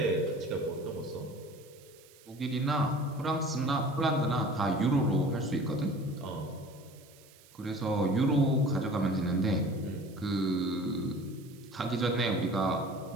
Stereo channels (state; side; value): noise; right; hiss, 25 dB below the sound